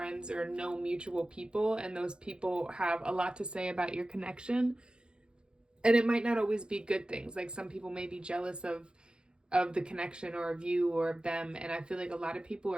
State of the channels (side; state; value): left; late; 0.049 ms